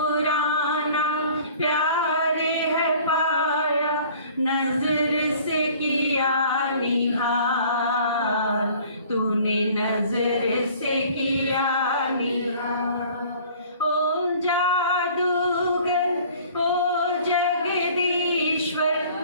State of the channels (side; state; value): both; inverted; correlation -0.50